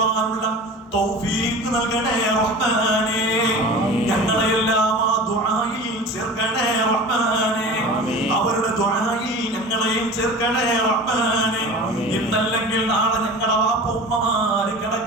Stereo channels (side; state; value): both; normal; correlation 0.35